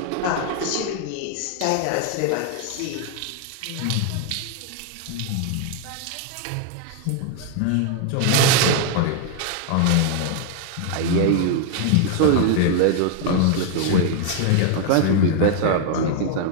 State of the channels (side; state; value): both; different; correlation 0.00